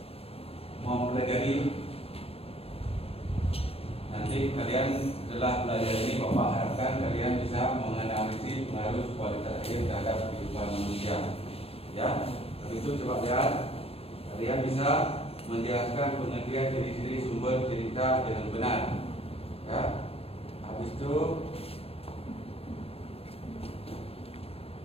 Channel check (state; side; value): late; right; 0.28 ms